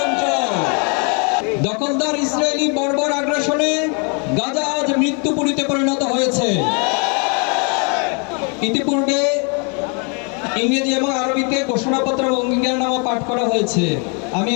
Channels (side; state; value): right; quieter; 36.3 dB